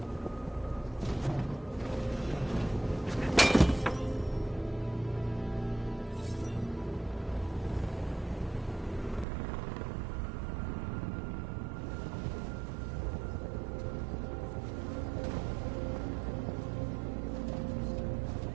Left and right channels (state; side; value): drops out; left; at 9.2 s